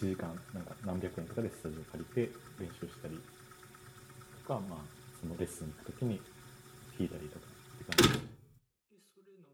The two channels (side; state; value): both; identical; correlation 1.00